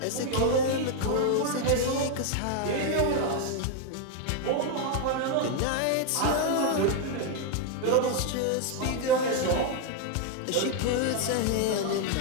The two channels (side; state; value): both; different; correlation 0.01